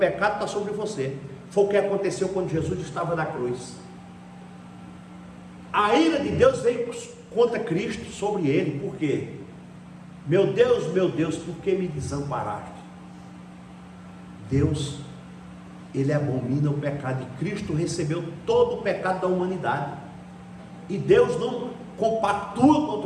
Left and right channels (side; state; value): both; identical; correlation 1.00